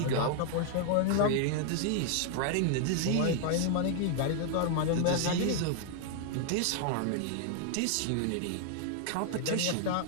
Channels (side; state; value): both; different; correlation 0.00